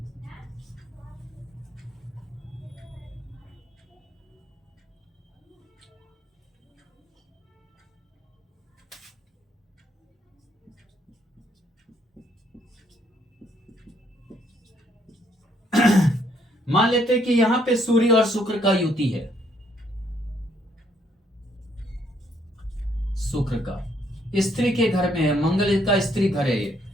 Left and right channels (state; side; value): normal; both; correlation 0.69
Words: मान लेते हैं कि यहां पे सूर्य और शुक्र का युति है। शुक्र का स्त्री के घर में है, मंगल का स्त्री घर है। ये